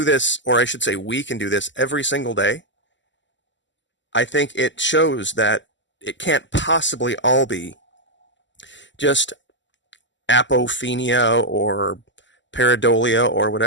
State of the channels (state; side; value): late; right; 0.54 ms